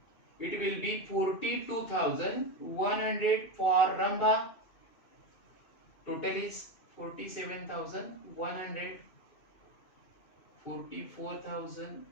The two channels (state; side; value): late; right; 2.6 ms